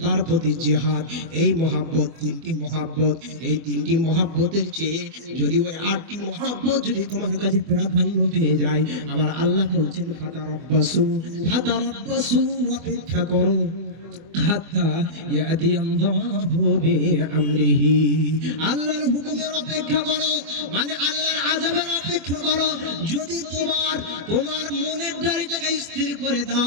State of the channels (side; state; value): left; late; 24 ms